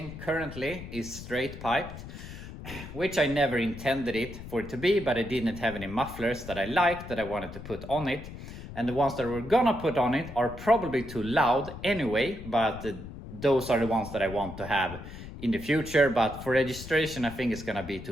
currently is straight piped, which I never intended it for it to be, but I didn't have any mufflers that I liked that I wanted to put on it. And the ones that we're gonna put on it are probably too loud anyway, but those are the ones that I want to have in the future. But for registration, I think it's gonna be too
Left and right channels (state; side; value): noise; left; rumble, 12 dB below the sound